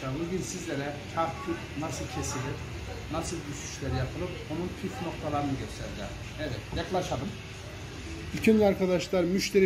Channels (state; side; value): identical; both; correlation 1.00